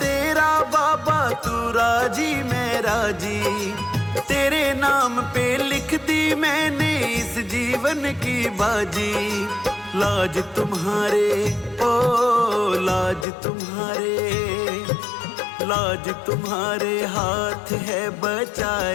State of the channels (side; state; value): right; drops out; at 13.2 s